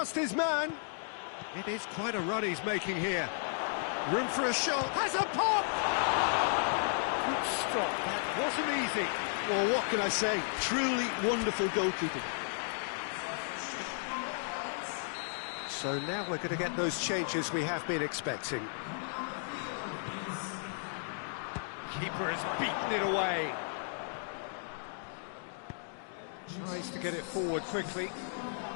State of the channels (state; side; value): silent; right; digital silence